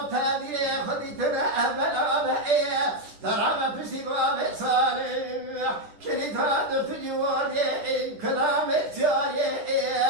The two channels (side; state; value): left; late; 10 ms